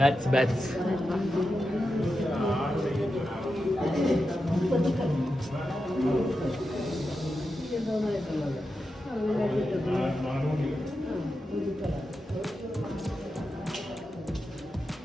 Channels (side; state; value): both; normal; correlation 0.89